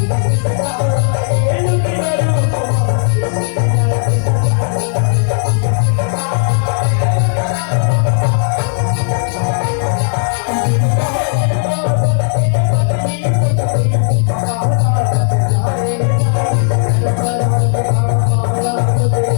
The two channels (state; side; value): silent; right; digital silence